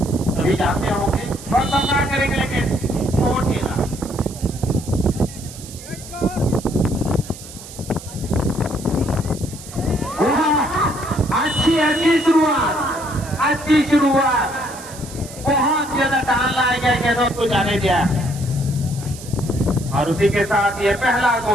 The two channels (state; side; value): noise; right; hiss, 15 dB below the sound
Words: अभी जाते होंगे और सामना करेंगे, लेकिन छोटेलाल अच्छी शुरुआत, बहुत ज्यादा टाल लाया गया गेंदों को जाने दिया, और उसी के साथ ये पहला